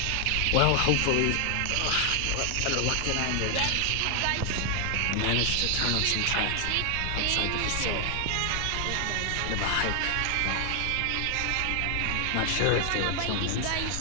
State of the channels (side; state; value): both; different; correlation 0.00